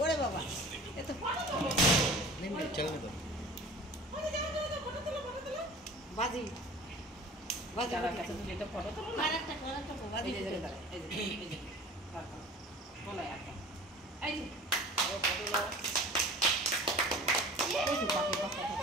ওরে বাবা এত ফটো তোলো চল না ফটো তোলো বাজি বাজি দাদার কাছে তুমি একটা ফটো তোলো না আরেকটা বাজি এই যে বলো একটা এই যে ফটো নাও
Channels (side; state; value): both; normal; correlation 0.42